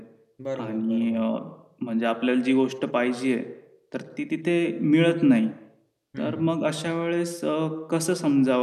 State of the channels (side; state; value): both; identical; correlation 1.00